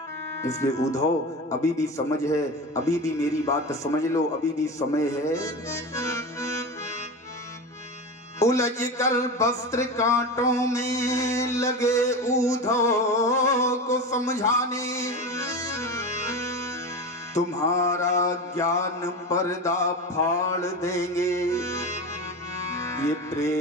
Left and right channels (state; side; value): normal; both; correlation 0.25